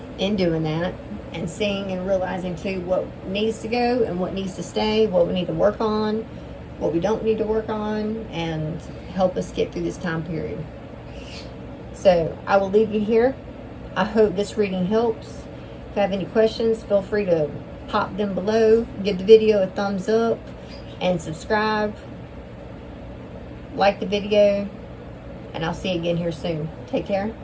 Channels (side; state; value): both; identical; correlation 1.00